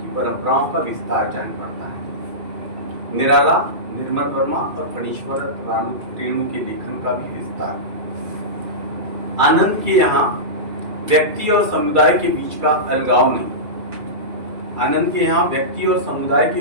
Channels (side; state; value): left; late; 2.3 ms